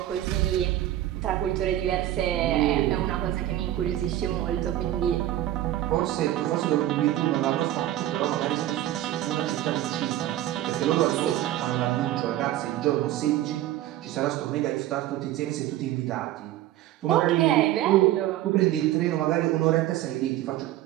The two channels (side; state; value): left; quieter; 13.7 dB